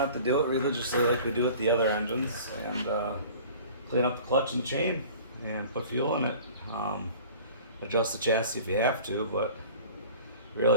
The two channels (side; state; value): both; inverted; correlation -0.45